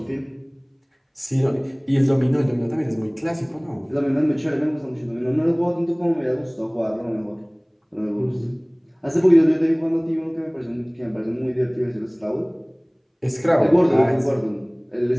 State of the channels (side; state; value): both; identical; correlation 1.00